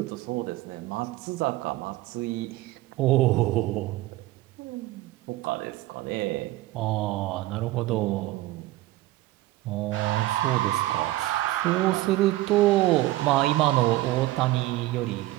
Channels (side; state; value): left; quieter; 17.2 dB